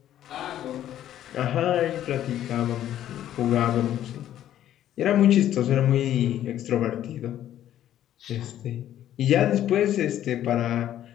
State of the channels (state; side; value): quieter; right; 11.8 dB